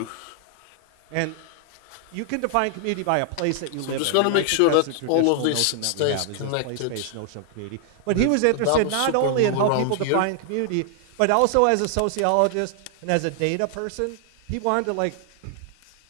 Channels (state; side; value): different; both; correlation 0.00